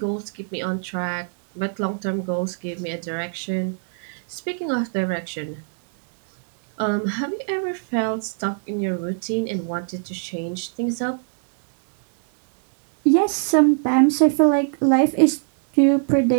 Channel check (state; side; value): silent; left; digital silence